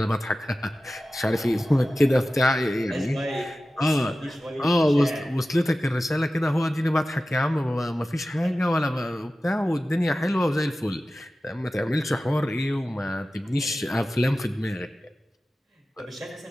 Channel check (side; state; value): both; normal; correlation 0.95